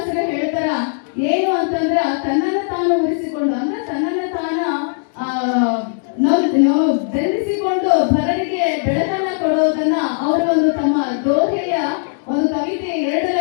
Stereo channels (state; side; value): silent; right; digital silence